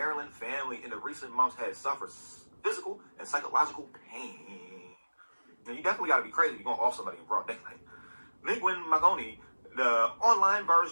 family in the recent months had suffered physical and psychological pain. Now, you definitely got to be crazy if you're going to off somebody in broad daylight. Linguin Magoni, the online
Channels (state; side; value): inverted; both; correlation -1.00